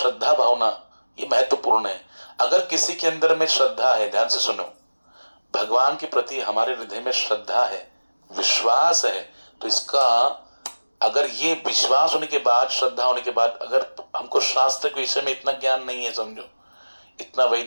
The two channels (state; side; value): inverted; both; correlation -1.00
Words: भावना, ये महत्वपूर्ण है। अगर किसी के अंदर में श्रद्धा है, ध्यान से सुनो, भगवान के प्रति हमारे हृदय में श्रद्धा है, विश्वास है, तो इसका अगर ये विश्वास होने के बाद, श्रद्धा होने के बाद, अगर हमको शास्त्र के विषय में इतना ज्ञान नहीं है, समझो इतना